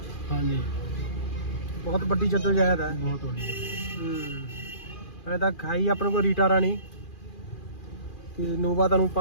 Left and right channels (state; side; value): late; right; 2.4 ms